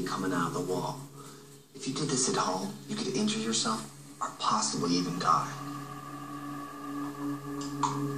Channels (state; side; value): identical; both; correlation 1.00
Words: coming out of the wall. If you did this at home, you could injure yourself or possibly even die.